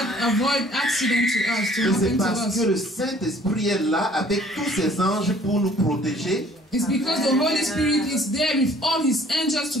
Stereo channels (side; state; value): both; normal; correlation 0.56